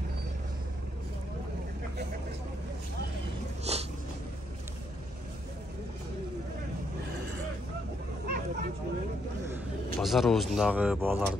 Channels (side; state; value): both; normal; correlation 0.75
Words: Pazar o'zindagi bolalar